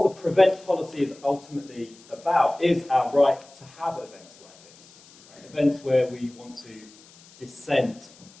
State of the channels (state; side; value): noise; left; hiss, 25 dB below the sound